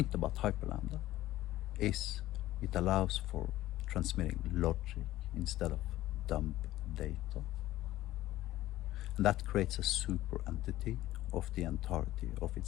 about hyperlambda is it allows for transmitting logic instead of dump data. And that creates a super entity of the entirety of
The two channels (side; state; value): right; quieter; 15.4 dB